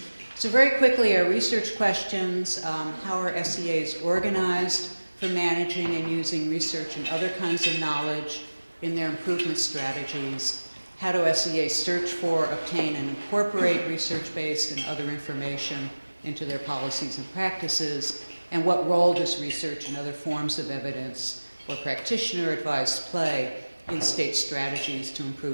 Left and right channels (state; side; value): inverted; both; correlation -1.00